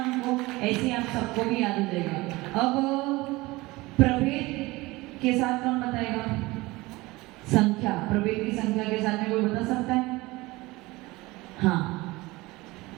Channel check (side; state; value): left; quieter; 21.2 dB